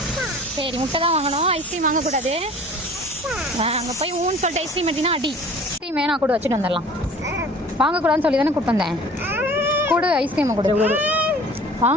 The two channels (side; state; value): both; normal; correlation 0.46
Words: சரி முட்டை தான் வாங்கணும், ஐஸ்கிரீம் வாங்கக்கூடாது. அங்கே போய் ஊன்னு சொல்லிட்டு ஐஸ்கிரீம் எடுத்தீங்கன்னா அடி. ஐஸ்கிரீம் வேணா கூட வச்சுட்டு வந்துடலாம். வாங்கக்கூடாதுன்னு சொல்லி தானே கூப்பிட்டு வந்தேன். கொடு ஐஸ்கிரீமை கொடு.